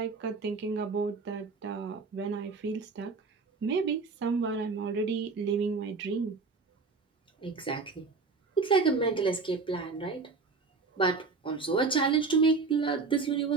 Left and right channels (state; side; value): quieter; left; 4.3 dB